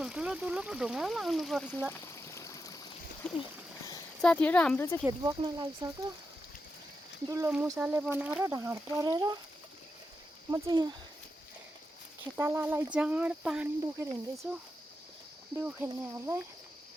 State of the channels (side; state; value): both; normal; correlation 0.87